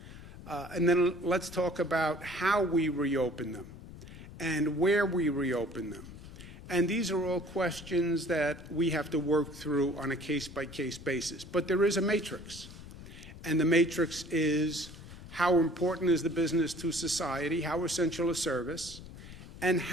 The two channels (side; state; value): left; noise; rumble, 15 dB below the sound